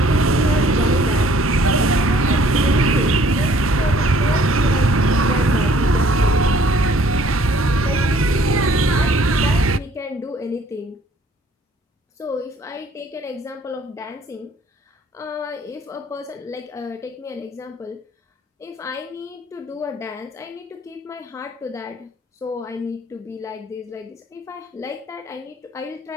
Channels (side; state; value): both; normal; correlation 0.58